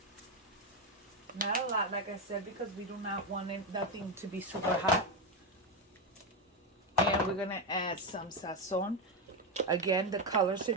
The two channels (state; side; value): normal; both; correlation 0.09